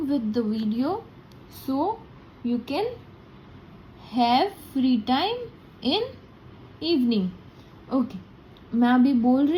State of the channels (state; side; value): identical; both; correlation 1.00